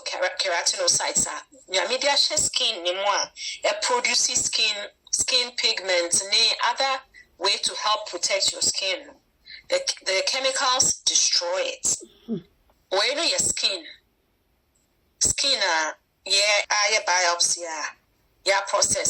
keratinocytes. Your media skin, it produces skin pigments, and other way to help protect your skin. The chemicals destroy it. When your skin, biopsy,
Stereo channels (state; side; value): identical; both; correlation 1.00